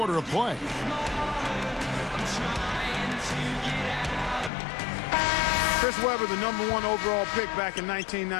of play. Chris Webber, the #1 overall pick back in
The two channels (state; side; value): drops out; right; at 4.5 s